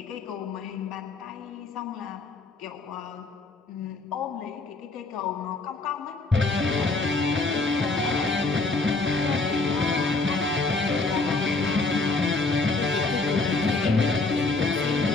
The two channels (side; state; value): right; quieter; 3.6 dB